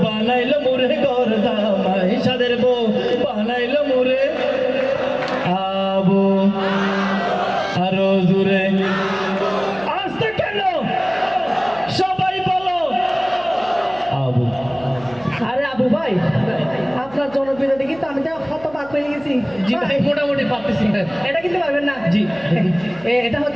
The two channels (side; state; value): right; noise; hum, 22 dB below the sound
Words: বানাইলো মোরে ঘর জামাই, সাদের বউ বানাইলো মোরে। আবু আরো জোরে। আসতে কেন সবাই বলো আবু। আরে আবু ভাই, আপনার জনপ্রিয়তা দেখি তো আমি তো হতবাক হয়ে গেছি। জি ভাই মোটামুটি পারতেছি। এটা কিন্তু পারবেন না। জি। এটা